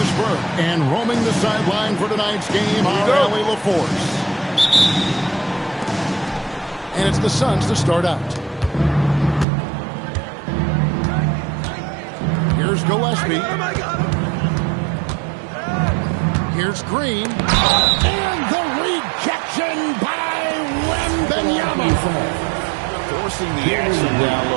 Burke. And roaming the sideline for tonight's game, our Allie LaForce. And it's the Suns to start out. Here's Gillespie. Here's Green. And the rejection by Wembanyama. Forcing the action down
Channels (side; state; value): left; drops out; at 9.5 s